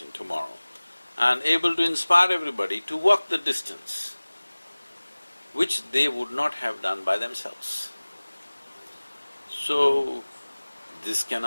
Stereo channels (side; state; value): both; inverted; correlation -1.00